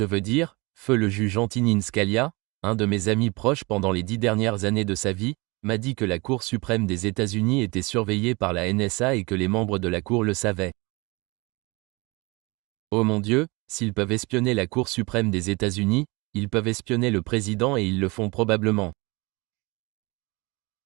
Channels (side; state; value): left; quieter; 25.6 dB